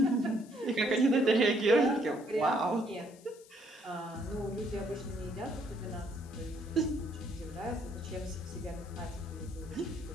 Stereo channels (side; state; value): left; noise; hiss, 24 dB below the sound